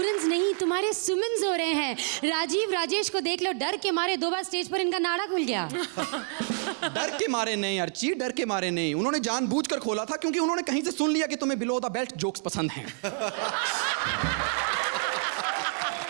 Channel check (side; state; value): left; silent; 59 dB below the other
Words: नहीं, तुम्हारे सुमन्स हो रहे हैं। राजीव राजेश को देख लो, डर के मारे 2 बार स्टेज पर इनका नाड़ा खुल गया। डर के मारे नहीं अर्ची, डर के मारे नहीं, उन्होंने जानबूझकर खोला था क्योंकि उन्होंने कहीं से सुन लिया कि तुम्हें बिलो द बेल्ट जोक्स पसंद हैं।